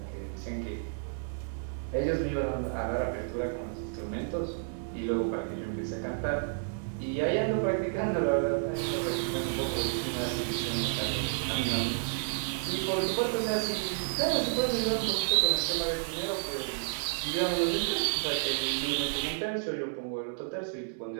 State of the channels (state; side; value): silent; left; digital silence